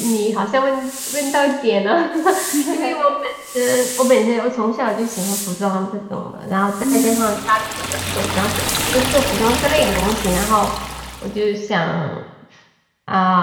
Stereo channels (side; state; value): both; identical; correlation 1.00